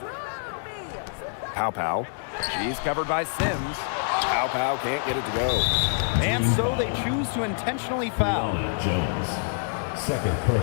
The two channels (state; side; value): silent; right; digital silence